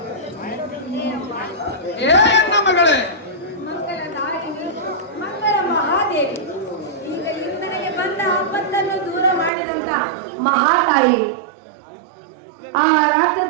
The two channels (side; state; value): left; drops out; at 9.5 s